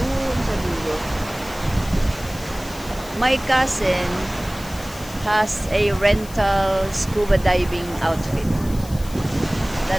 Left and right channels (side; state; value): left; noise; hiss, 17 dB below the sound